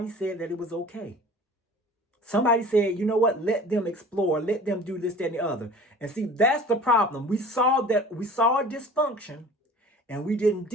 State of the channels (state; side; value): normal; both; correlation 0.44